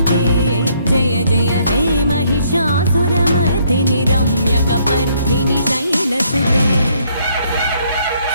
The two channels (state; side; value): inverted; both; correlation -0.68